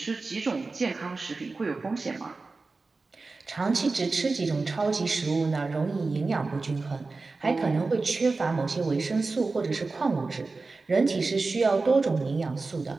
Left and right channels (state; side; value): quieter; left; 3.8 dB